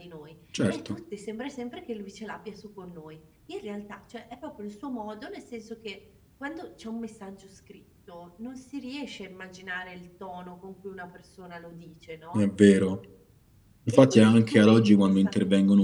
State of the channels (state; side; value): identical; both; correlation 1.00